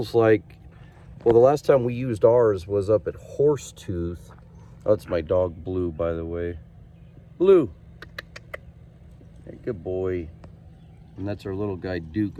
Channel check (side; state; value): both; identical; correlation 1.00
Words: like, well, the last time we used ours was up at Horsetooth. Oh, that's my dog Blue, by the way. Blue, hey, good boy. And that's our little guy Duke